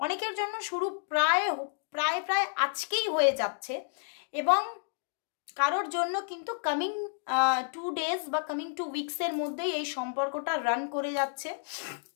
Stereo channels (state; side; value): silent; right; digital silence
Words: অনেকের জন্য, শুরু প্রায় প্রায় প্রায় আজকেই হয়ে যাচ্ছে। এবং কারোর জন্য কিন্তু কামিং 2 ডেজ বা কামিং 2 উইকসের মধ্যেই এই সম্পর্কটা রান করে যাচ্ছে